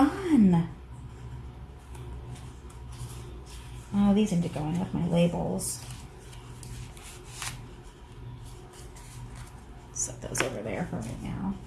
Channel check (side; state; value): both; identical; correlation 1.00